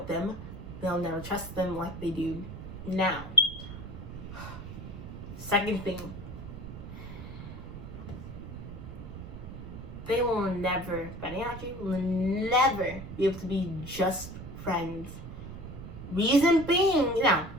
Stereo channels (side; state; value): right; noise; rumble, 11 dB below the sound